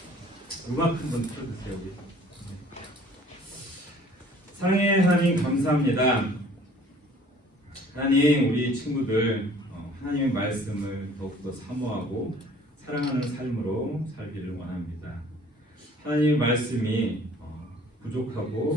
음악 한번 틀어주세요. 우리. 사랑의 하나님 감사합니다. 하나님 우리 친구들 하나님의 말씀을 더욱더 사모하고 사랑하는 삶으로 살기를 원합니다. 하나님의 말씀이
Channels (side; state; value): both; normal; correlation 0.53